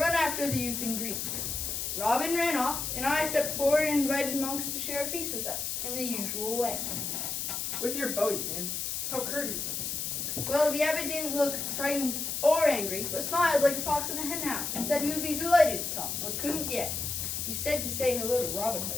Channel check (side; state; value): left; noise; hiss, 2 dB below the sound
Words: after the youth in green. Robin ran off, and I stepped forward and invited monks to share a feast with us in the usual way. With your bow, you mean? How courteous. Well, the abbot didn't look frightened or angry, but smiled like a fox in a henhouse and said he would be delighted to come, but couldn't yet. He said to say hello to Robin